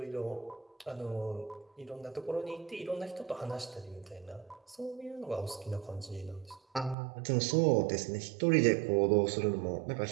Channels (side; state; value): left; drops out; at 7.0 s